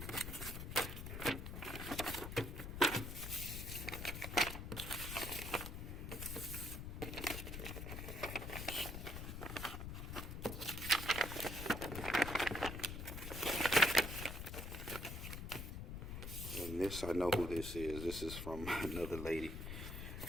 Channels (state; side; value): noise; left; rumble, 6 dB below the sound